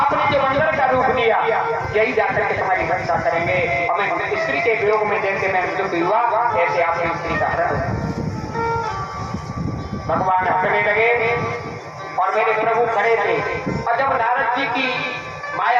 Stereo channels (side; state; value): both; identical; correlation 1.00